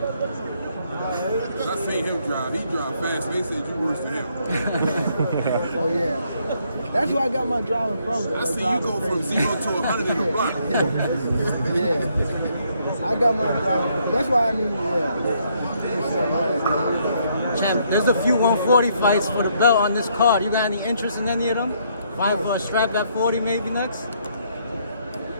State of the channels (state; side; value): inverted; both; correlation -0.71